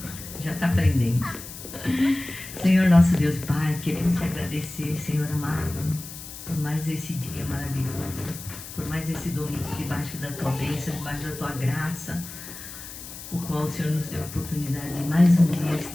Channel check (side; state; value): left; noise; hiss, 12 dB below the sound